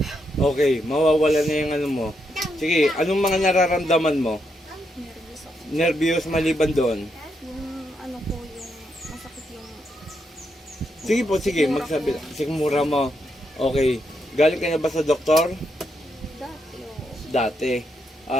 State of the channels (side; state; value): both; normal; correlation 0.80